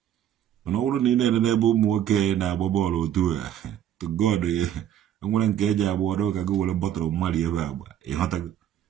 Mana ọ bụrụ na ị na-enene ebe ụmụ nwoke na-agba bọọlụ otu a to God enwere nke eji agba ọdụ ka gị were bọtụrụ mmadụ ebe agba ịghọtago.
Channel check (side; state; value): left; quieter; 10.7 dB